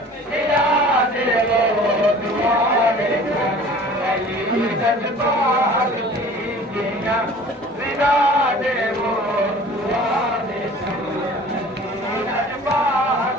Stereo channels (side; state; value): both; normal; correlation 0.46